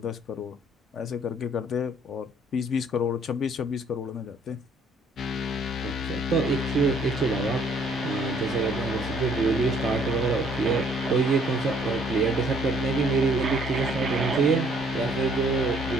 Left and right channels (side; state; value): both; normal; correlation 0.62